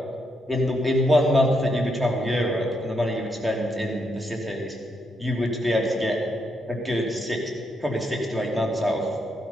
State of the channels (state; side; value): normal; both; correlation 0.79